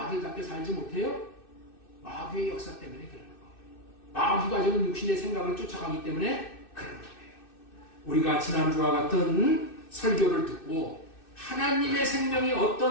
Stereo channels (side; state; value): right; late; 2.6 ms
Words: 살지 못해요? 마귀의 역사 때문에 그러는 거예요. 마귀가 지금 육신의 생각을 쫓아가기 때문에 그러는 거예요. 우리가 지난주와 같은 설교를 듣고 하나님의 생명이